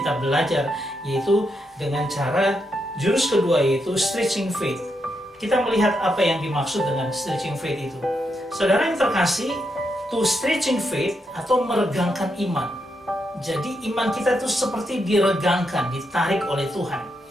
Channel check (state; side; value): normal; both; correlation 0.82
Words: belajar, yaitu dengan cara jurus kedua, yaitu stretching faith. Kita melihat apa yang dimaksud dengan stretching faith itu. Saudara yang terkasih, to stretching faith atau meregangkan iman. Jadi iman kita itu seperti diregangkan, ditarik oleh Tuhan.